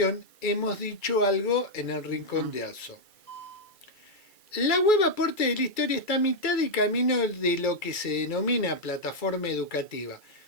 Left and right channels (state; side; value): late; right; 2.3 ms